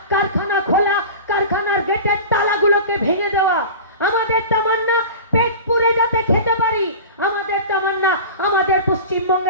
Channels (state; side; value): inverted; both; correlation -0.33